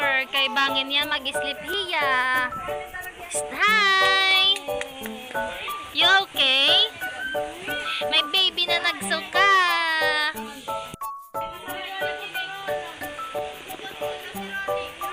kay bangin yan mag-sleep hiya. Hi! You okay? May baby na nagsuka.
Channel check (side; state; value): both; identical; correlation 1.00